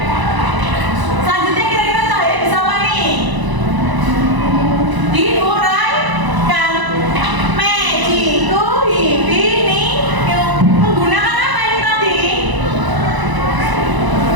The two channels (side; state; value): left; late; 1.0 ms